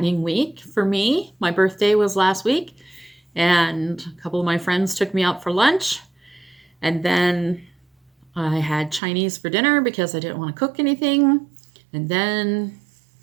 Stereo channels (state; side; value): drops out; left; at 9.0 s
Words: week for me. My birthday was last week and a couple of my friends took me out for lunch, and then I had Chinese for dinner because I didn't want to cook anything. And then